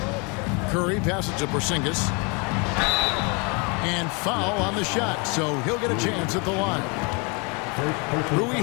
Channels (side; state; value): right; quieter; 31.8 dB